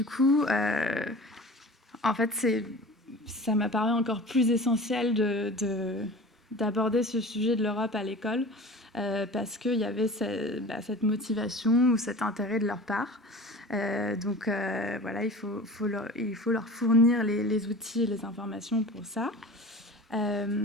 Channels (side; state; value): both; normal; correlation 0.38